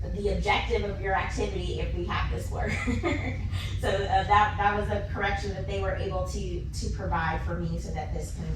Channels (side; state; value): both; identical; correlation 1.00